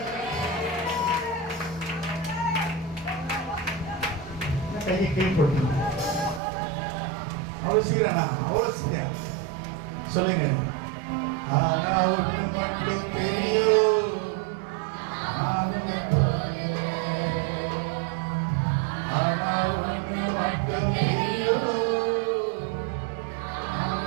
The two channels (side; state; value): left; drops out; at 6.4 s